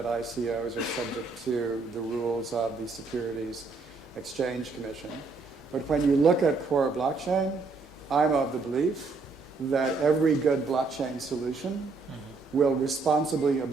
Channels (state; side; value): quieter; left; 4.1 dB